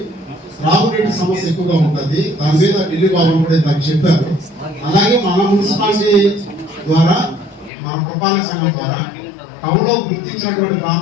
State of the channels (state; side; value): drops out; right; at 7.7 s